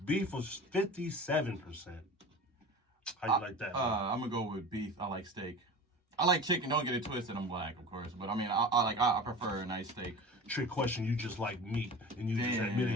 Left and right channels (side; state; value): both; normal; correlation 0.34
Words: Beef was 57%. How you like that? I'm gonna go with beef. I like steak. I like chicken. Don't get it twisted. I'm black, of course, but I mean, I prefer a nice steak. Trick question. You just like meat, and you just Damn.